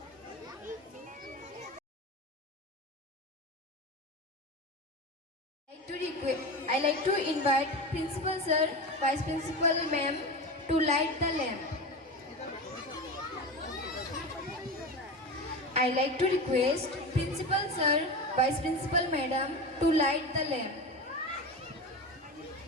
I like to invite Principal Sir, Vice Principal Ma'am to light the lamp. I like to request Principal Sir, Vice Principal Madam to light the lamp.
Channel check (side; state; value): both; normal; correlation 0.24